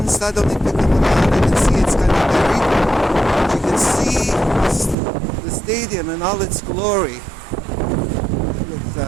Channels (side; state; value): left; drops out; at 5.0 s